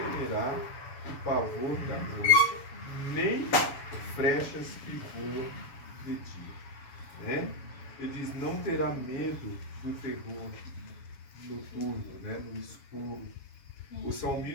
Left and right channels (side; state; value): right; late; 7.1 ms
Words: o pavor da noite, nem flechas que voam de né? Ele diz, não terá medo do terror noturno, né? No escuro. O